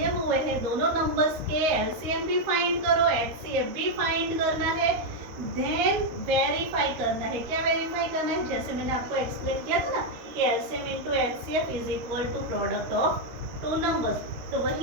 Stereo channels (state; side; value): late; left; 13 ms